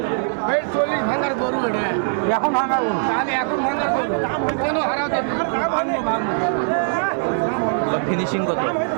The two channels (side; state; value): left; silent; digital silence